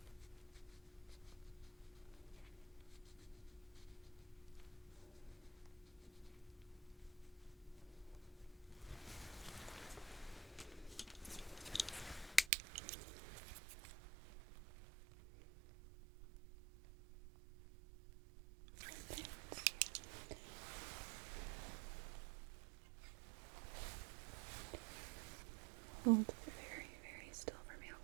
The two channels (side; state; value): left; drops out; at 12.5 s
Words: Hold very, very still for me,